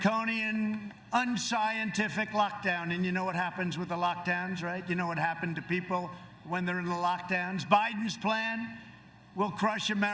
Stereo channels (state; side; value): identical; both; correlation 1.00